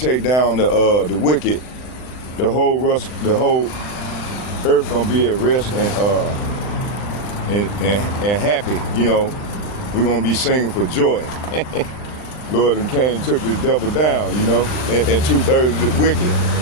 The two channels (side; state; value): right; late; 39 ms